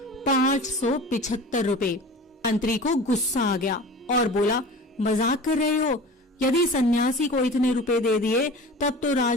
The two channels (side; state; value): both; normal; correlation 0.37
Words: रुपए। मंत्री को गुस्सा आ गया और बोला, मजाक कर रहे हो? यदि सन्यासी को इतने रुपए दे दिए तब तो